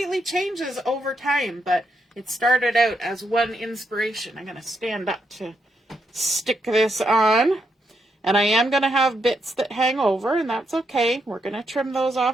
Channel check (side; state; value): both; normal; correlation 0.80